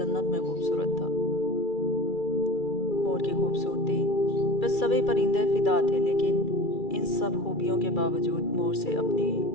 में खूबसूरत था। मोर की खूबसूरती पे सभी परिंदे फिदा थे, लेकिन इन सब खूबियों के बावजूद मोर से अपनी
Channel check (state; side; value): late; right; 2.3 ms